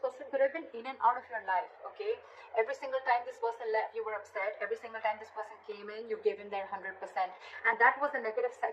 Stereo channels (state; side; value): identical; both; correlation 1.00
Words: could have been in and out of your life, okay? Every single time this person left, you were upset. Every single time this person came in, you gave him their 100%, and that was a negative